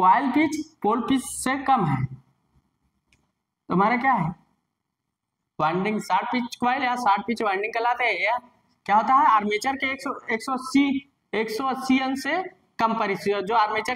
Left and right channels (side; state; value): both; identical; correlation 1.00